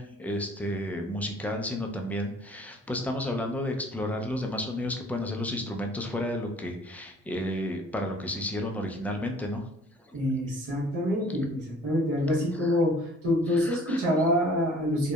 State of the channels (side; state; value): both; normal; correlation 0.53